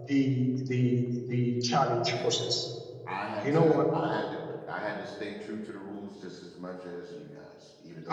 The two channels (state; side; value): identical; both; correlation 1.00